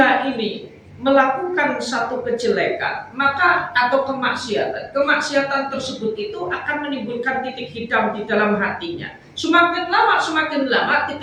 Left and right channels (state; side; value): identical; both; correlation 1.00